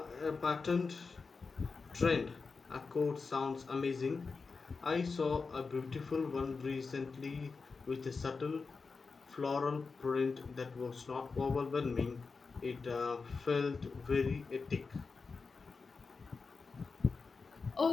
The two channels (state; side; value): quieter; right; 4.6 dB